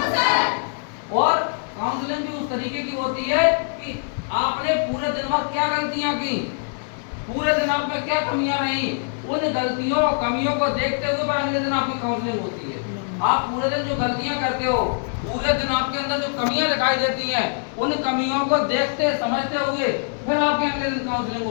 और काउंसलिंग भी उस तरीके की होती है कि आपने पूरे दिन भर क्या गलतियां की, पूरे दिन आप में क्या कमियां रही, उन गलतियों कमियों को देखते हुए पर अगले दिन आपकी काउंसलिंग होती है। आप पूरे दिन जो गलतियां करते हो, पूरे दिन आपके अंदर जो कमियां दिखाई देती हैं, उन कमियों को देखते समझते हुए फिर आपके अगले दिन काउंसलिंग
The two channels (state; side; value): silent; right; 62 dB below the other